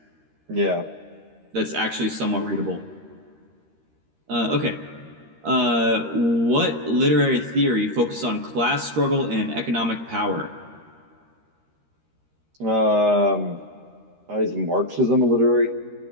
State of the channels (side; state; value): left; late; 13 ms